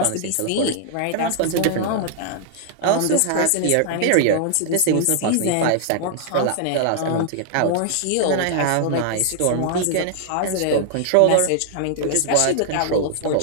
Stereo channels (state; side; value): different; both; correlation -0.01